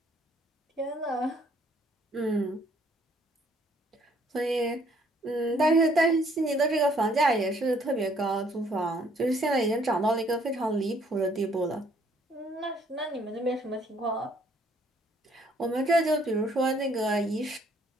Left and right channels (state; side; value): normal; both; correlation 0.64